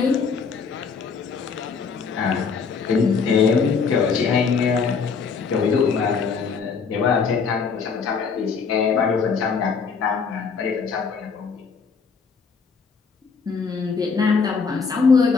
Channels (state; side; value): quieter; right; 5.4 dB